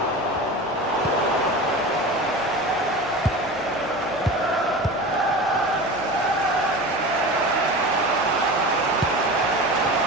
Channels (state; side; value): noise; left; hum, 22 dB below the sound